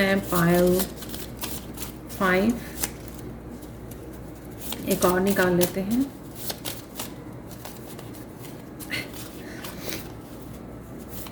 पायल 5 एक और निकाल लेते हैं।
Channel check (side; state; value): both; identical; correlation 1.00